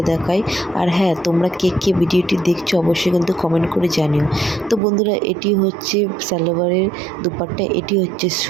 দেখাই। আর হ্যাঁ, তোমরা কে কে ভিডিওটি দেখছো অবশ্যই কিন্তু কমেন্ট করে জানিও। তো বন্ধুরা, এটি হচ্ছে সালোয়ারের দুপাট্টা, এটি হচ্ছে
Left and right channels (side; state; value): left; drops out; at 4.8 s